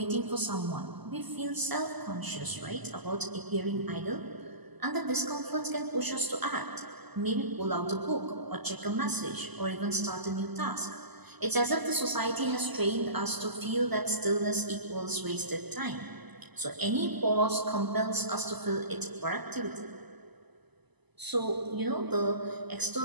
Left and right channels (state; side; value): late; left; 1.0 ms